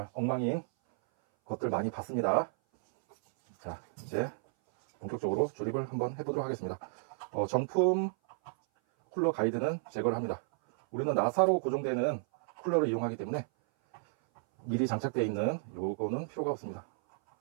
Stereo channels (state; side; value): silent; left; 56 dB below the other